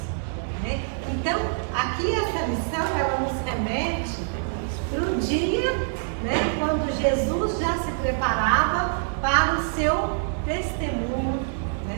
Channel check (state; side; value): silent; left; 62 dB below the other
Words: Né? Então, aqui essa lição ela nos remete para o dia, né, quando Jesus já se preparava para o seu testemunho,